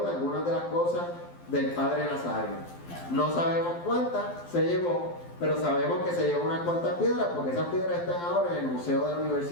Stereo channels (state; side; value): late; right; 12 ms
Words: de algunas de las cosas del padre Nazario. No sabemos cuántas se llevó, pero sabemos que se llevó unas cuantas piedras, porque esas piedras están ahora en el Museo de la